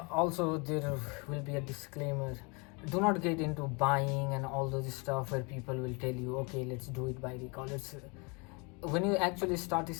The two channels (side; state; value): right; quieter; 31.0 dB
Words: Also, there will be a disclaimer. Do not get into buying and all those stuff where people will tell you, okay, let's do it by recall. It's when you actually start